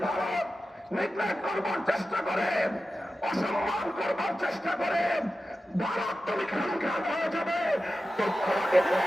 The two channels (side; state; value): both; normal; correlation 0.93